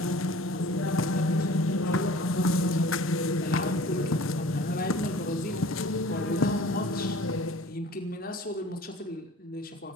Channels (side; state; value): both; normal; correlation 0.46